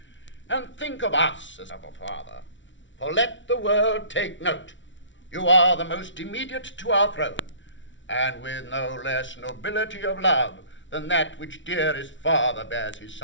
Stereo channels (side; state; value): right; late; 0.55 ms